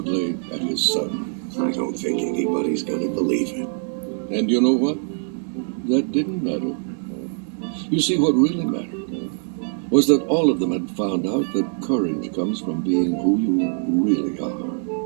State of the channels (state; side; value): silent; left; 59 dB below the other